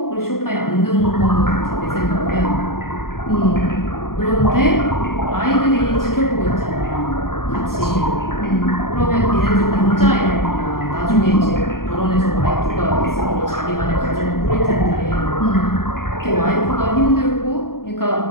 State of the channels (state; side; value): late; right; 0.93 ms